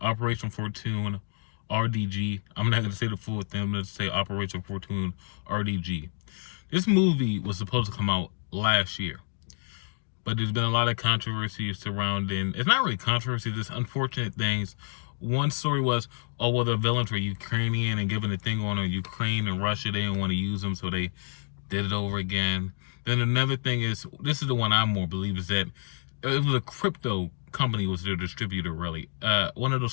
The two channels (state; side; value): silent; right; 55 dB below the other